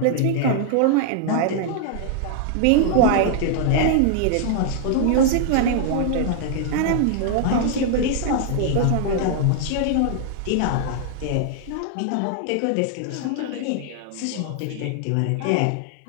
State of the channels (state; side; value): different; both; correlation -0.01